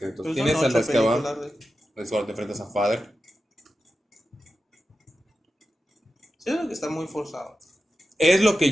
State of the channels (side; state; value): both; normal; correlation 0.91